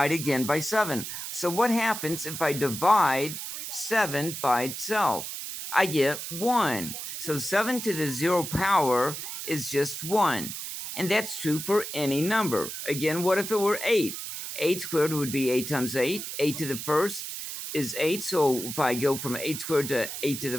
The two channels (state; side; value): noise; right; hiss, 7 dB below the sound